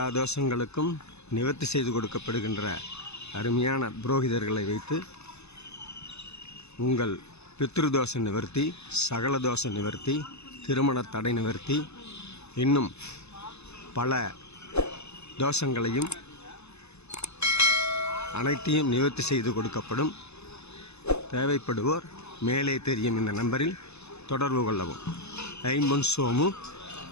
தோஷங்களுக்கும் நிவர்த்தி செய்து கொடுக்கப்படுகின்ற அருமையான புரோகிதர்களை வைத்து உங்கள் பித்ருதோஷ நிவர்த்தி, சகல தோஷ நிவர்த்தி, திருமண தடை நிவர்த்தி, இன்னும் பல தோஷங்களையும் அனைத்தையும் நிவர்த்தி செய்து கொடுக்கப்படும். தேவைப்படுவோர் மேலே தெரியும் இந்த நம்பரில் தொடர்பு கொள்ளவும். ஐம்பொன் சோமு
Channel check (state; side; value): late; right; 0.80 ms